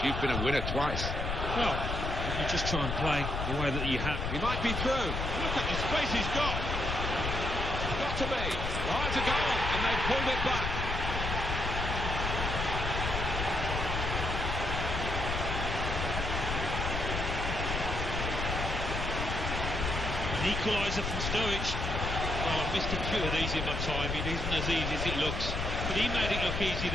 You've been a winner twice. Well, if you just try and play the way that you have. He might be through. Look at the space he's got. Got to be. Oh, it's a goal, and they've pulled it back. An equaliser from Sturridge. Oh, I've missed a few of these in my time. It isn't as easy as it looks. But he made it look easy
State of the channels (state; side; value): noise; left; rumble, 3 dB below the sound